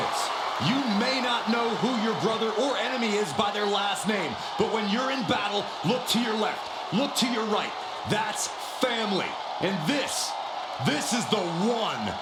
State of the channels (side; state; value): both; identical; correlation 1.00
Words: You may not know who your brother or enemy is by their last name, but when you're in battle, look to your left, look to your right. That's family. And this is the one